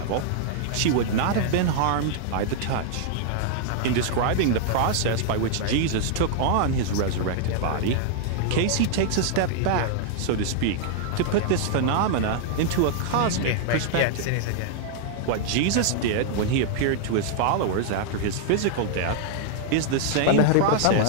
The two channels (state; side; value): different; both; correlation -0.01